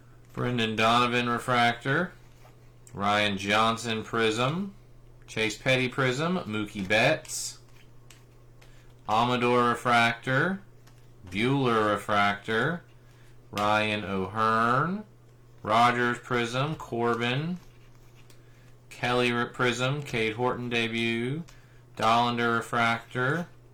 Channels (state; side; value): identical; both; correlation 1.00